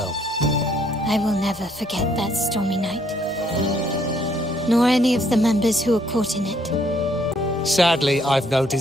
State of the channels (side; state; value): both; normal; correlation 0.68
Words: I will never forget that stormy night. Nor any of the members who were caught in it. Sadly, I've no